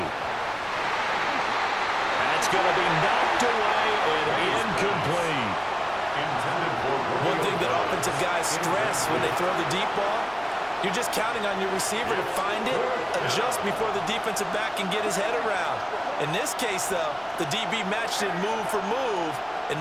That's going to be knocked away and incomplete. One thing that offensive guys stress when they throw the deep ball, you're just counting on your receiver to find it, adjust before the defensive back can get his head around. In this case, though, the DB matched it move for move and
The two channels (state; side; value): identical; both; correlation 1.00